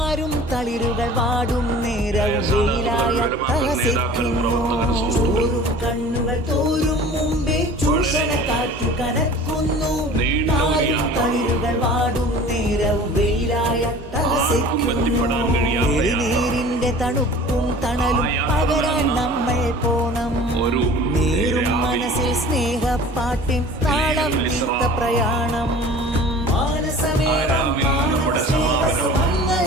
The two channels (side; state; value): both; normal; correlation 0.44